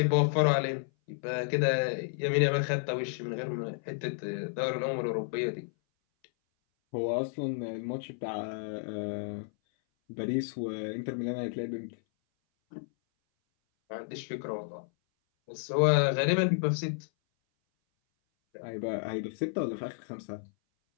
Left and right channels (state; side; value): silent; right; 57 dB below the other